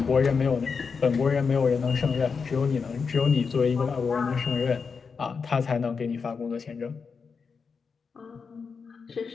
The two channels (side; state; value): right; quieter; 5.4 dB